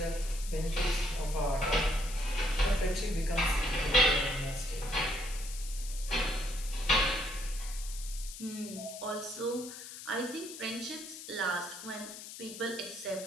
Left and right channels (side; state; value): left; noise; hiss, 11 dB below the sound